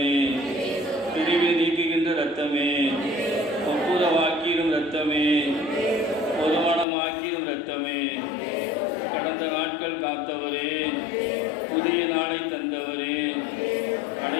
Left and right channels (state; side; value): drops out; right; at 6.9 s